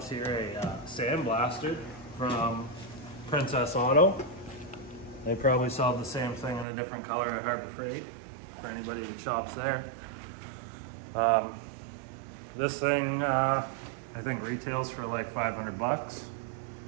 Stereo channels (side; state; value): left; drops out; at 6.7 s